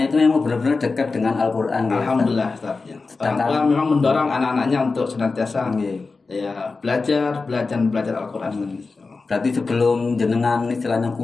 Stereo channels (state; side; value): quieter; right; 4.1 dB